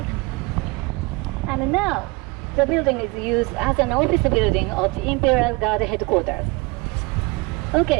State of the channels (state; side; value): quieter; left; 25.7 dB